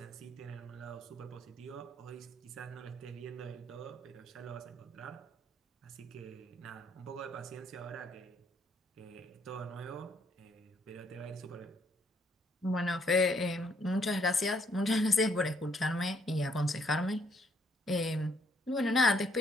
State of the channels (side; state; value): both; normal; correlation 0.69